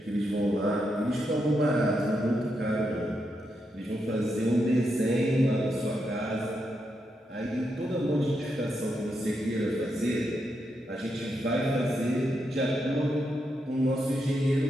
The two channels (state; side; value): normal; both; correlation 0.83